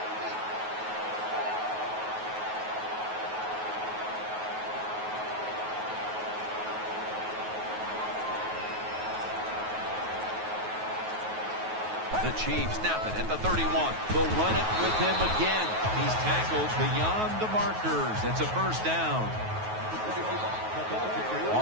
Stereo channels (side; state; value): left; late; 9.4 ms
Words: The Chiefs snap it at the 31. They'll run it with him again. He's tackled beyond the markers. It's a first down.